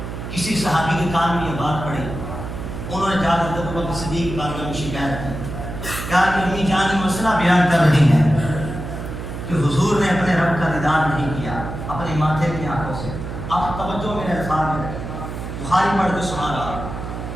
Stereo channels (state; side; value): noise; right; hum, 7 dB below the sound